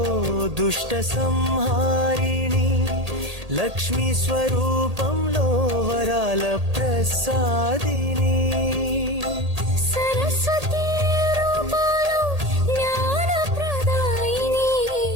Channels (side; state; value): left; late; 1.8 ms